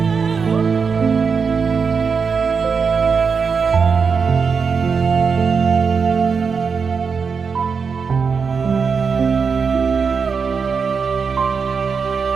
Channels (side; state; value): left; quieter; 5.6 dB